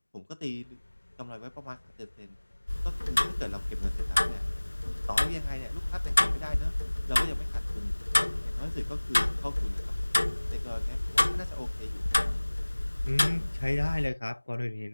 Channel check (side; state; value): both; inverted; correlation -1.00